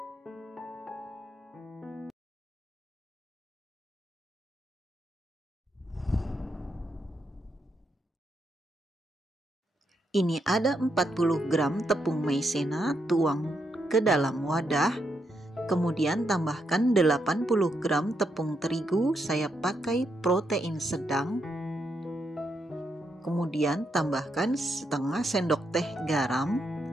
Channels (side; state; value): both; normal; correlation 0.80